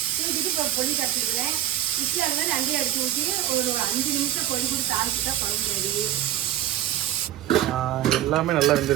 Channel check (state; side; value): quieter; left; 12.6 dB